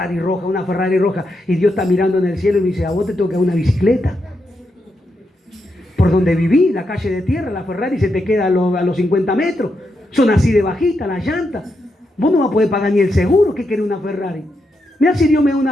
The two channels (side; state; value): both; normal; correlation 0.83